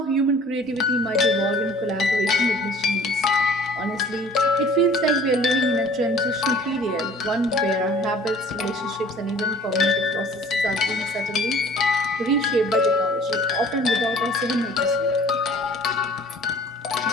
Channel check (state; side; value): normal; both; correlation 0.50